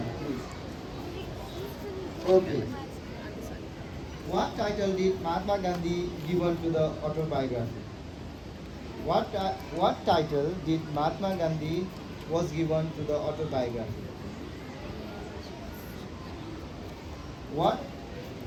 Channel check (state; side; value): identical; both; correlation 1.00